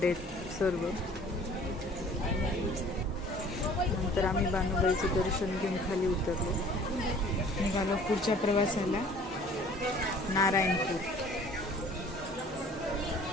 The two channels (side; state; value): both; normal; correlation 0.51